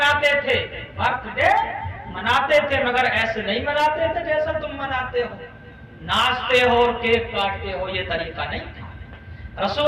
تھے، برتھ ڈے مناتے تھے، مگر ایسے نہیں مناتے تھے جیسا تم مناتے ہو، ناچتے ہو اور کیک کاٹتے ہو، یہ طریقہ نہیں تھا۔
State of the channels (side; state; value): both; identical; correlation 1.00